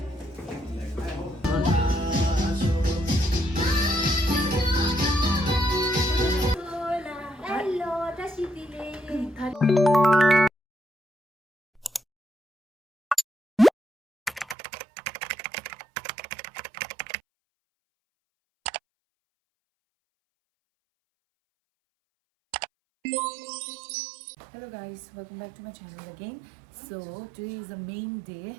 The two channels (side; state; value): left; drops out; at 14.6 s